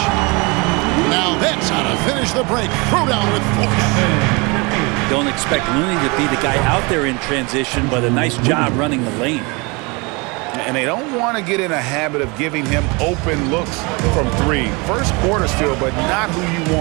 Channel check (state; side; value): quieter; left; 28.0 dB